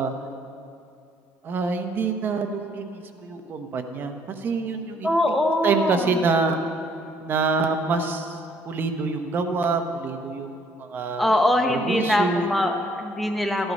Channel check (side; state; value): both; normal; correlation 0.65